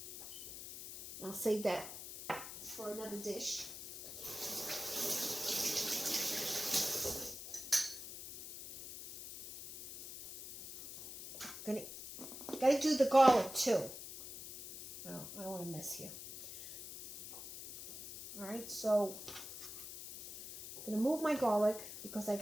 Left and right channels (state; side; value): noise; left; hiss, 11 dB below the sound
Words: I'll save that for another dish. Gotta do the garlic too. No, I don't want to mess here. All right, so I'm gonna move my garlic because I